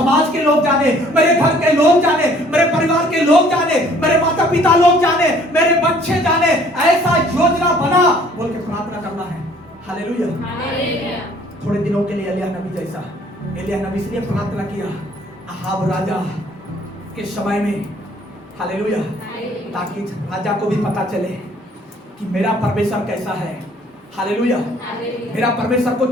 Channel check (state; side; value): normal; both; correlation 0.57